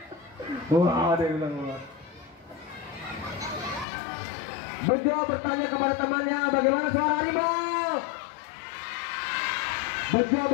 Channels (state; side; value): drops out; right; at 3.9 s